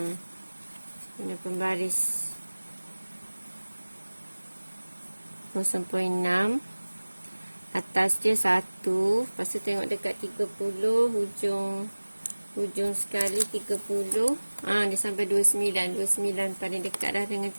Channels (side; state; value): both; inverted; correlation -1.00